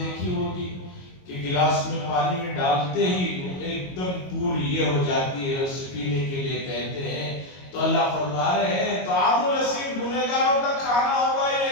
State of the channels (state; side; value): late; right; 22 ms